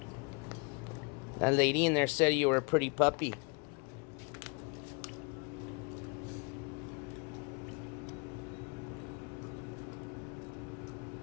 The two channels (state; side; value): quieter; right; 32.7 dB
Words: That lady in there said you were a pretty puppy.